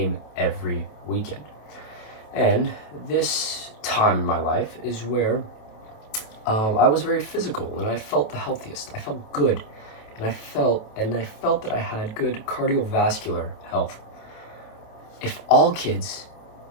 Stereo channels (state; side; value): late; right; 27 ms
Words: every weekend. And this time in my life is where I was very physical and I felt the healthiest. I felt good, and I felt that I had good cardiovascular health. If all kids